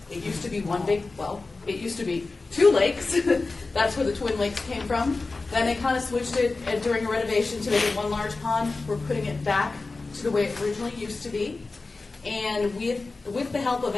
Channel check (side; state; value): right; quieter; 3.7 dB